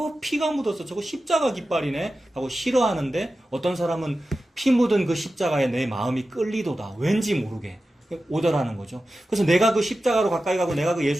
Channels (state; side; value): normal; both; correlation 0.93